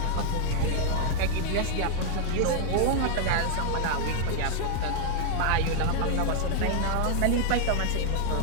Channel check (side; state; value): both; different; correlation 0.00